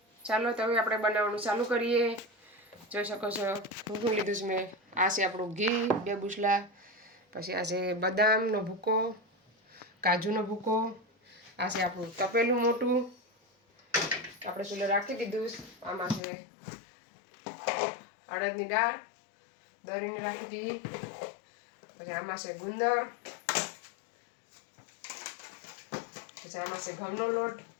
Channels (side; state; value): right; drops out; at 16.2 s